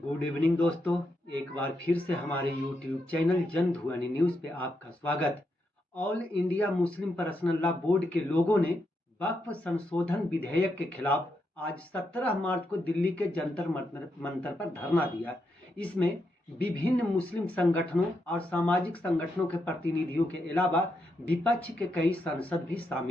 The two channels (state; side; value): normal; both; correlation 0.82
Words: गुड इवनिंग दोस्तों, एक बार फिर से हमारे YouTube चैनल जनध्वनि न्यूज़ पे आपका स्वागत। All India Muslim personal law board के लोगों ने वक्फ संशोधन विधेयक के खिलाफ आज 17 मार्च को दिल्ली के जंतर मंतर पर धरना दिया। इसमें विभिन्न मुस्लिम संगठनों और सामाजिक संगठनों के प्रतिनिधियों के अलावा विपक्ष के कई सांसद भी